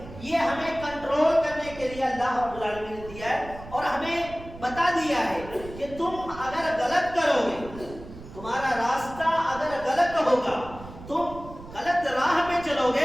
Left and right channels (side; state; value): right; noise; rumble, 15 dB below the sound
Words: یہ ہمیں کنٹرول کرنے کے لیے اللہ رب العالمین نے دیا ہے اور ہمیں بتا دیا ہے کہ تم اگر غلط کرو گے، تمہارا راستہ اگر غلط ہوگا، تم غلط راہ پہ چلو